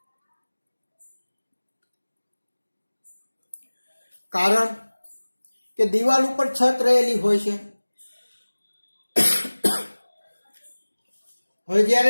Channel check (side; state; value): both; inverted; correlation -1.00